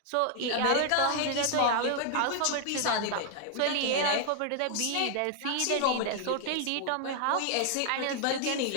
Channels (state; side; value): different; both; correlation 0.00